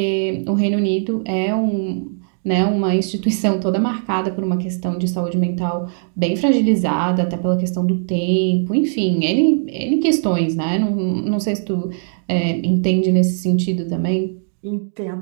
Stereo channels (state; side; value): silent; left; digital silence